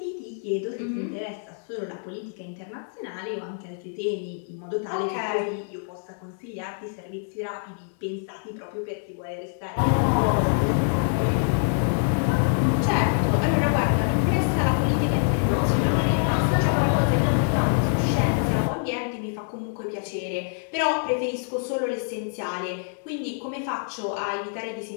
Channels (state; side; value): silent; right; 61 dB below the other